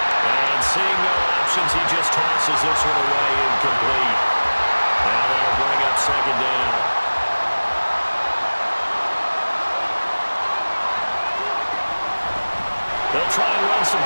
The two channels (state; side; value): inverted; both; correlation -1.00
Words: And seeing no options, he just tosses this one away incomplete. Now that'll bring up 2nd down. They'll try and run some